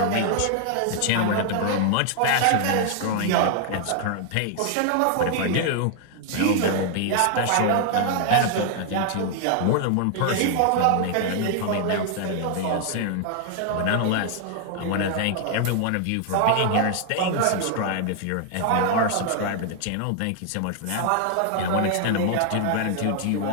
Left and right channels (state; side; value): different; both; correlation 0.00